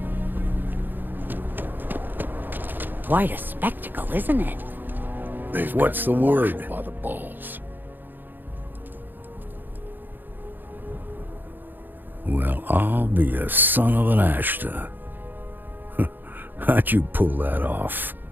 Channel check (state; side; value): late; left; 0.091 ms